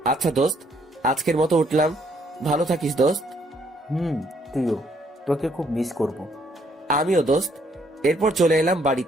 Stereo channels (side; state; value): both; normal; correlation 0.69